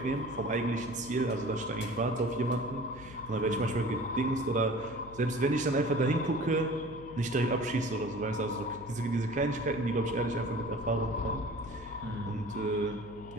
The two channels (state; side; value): noise; left; hum, 17 dB below the sound